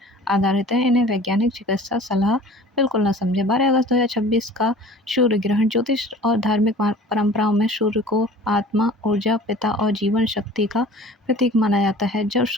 आधारित हैं। इन्हें वैज्ञानिक चिकित्सा सलाह बिल्कुल न समझें। 12 अगस्त 2026 का सूर्य ग्रहण ज्योतिष और धार्मिक परंपराओं में सूर्य को आत्मा, ऊर्जा, पिता और जीवन शक्ति का प्रतीक माना जाता है। जब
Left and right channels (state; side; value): normal; both; correlation 0.45